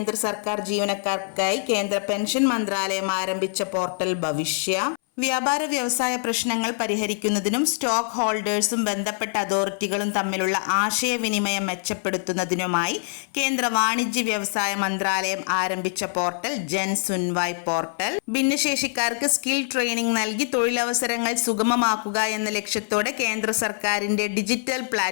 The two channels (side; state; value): right; silent; 61 dB below the other